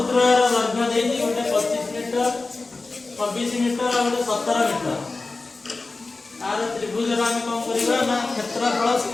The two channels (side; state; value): right; quieter; 3.6 dB